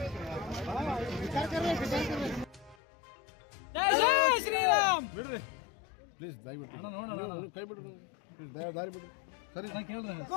ಜೈ ಜೈ ಶ್ರೀರಾಮ್. ಬಿಡ್ರಿ ಪ್ಲೀಸ್, ದಯವಿಟ್ಟು ಕೈ ಬಿಡ್ರಿ, ದಾರಿ ಬಿಡ್ರಿ. ಸರಿ ಕೇಳ್ರಿ.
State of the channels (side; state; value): right; drops out; at 2.8 s